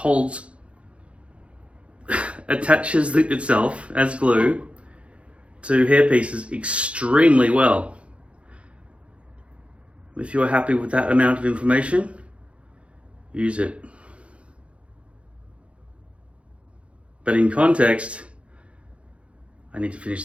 attaches itself as glue to hairpieces extremely well. If you're happy with that amount of information, use it. But in context, I need to finish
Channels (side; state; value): left; late; 0.061 ms